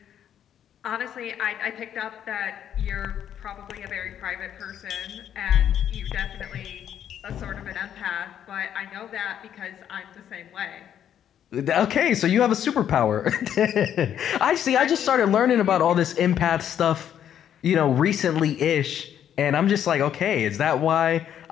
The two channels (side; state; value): right; quieter; 9.8 dB